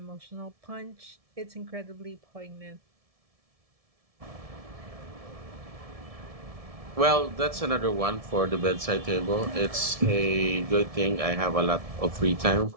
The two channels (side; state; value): left; late; 1.7 ms